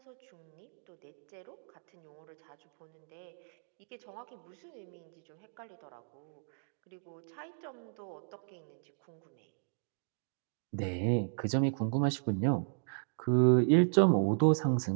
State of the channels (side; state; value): left; silent; digital silence